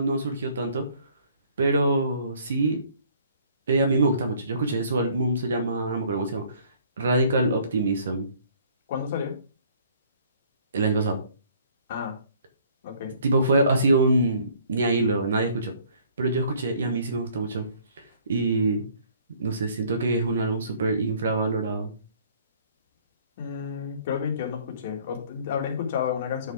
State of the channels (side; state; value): both; inverted; correlation -0.58